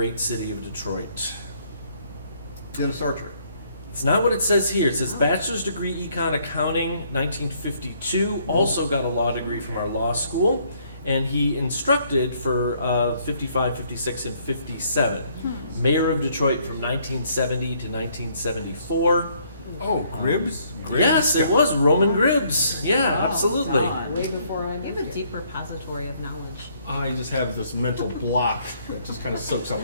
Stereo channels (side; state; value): both; inverted; correlation -0.66